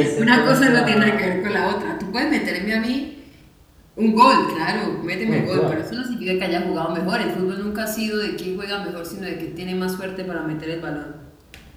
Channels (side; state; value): both; identical; correlation 1.00